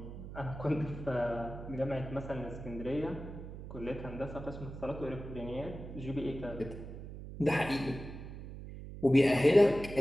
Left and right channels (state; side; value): noise; right; hum, 11 dB below the sound